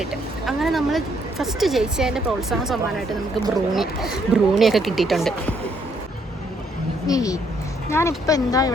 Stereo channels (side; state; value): both; normal; correlation 0.70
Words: അങ്ങനെ നമ്മൾ ഫസ്റ്റ് ജയിച്ചതിൻ്റെ പ്രോത്സാഹന സമ്മാനമായിട്ട് നമുക്ക് ബ്രൂണിയൊക്കെ കിട്ടിയിട്ടുണ്ട്. ഞാനിപ്പോൾ എന്താ